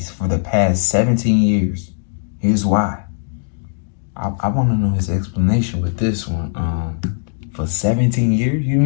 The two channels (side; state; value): right; silent; digital silence